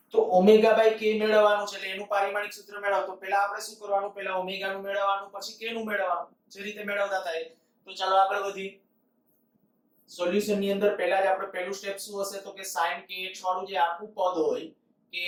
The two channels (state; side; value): identical; both; correlation 1.00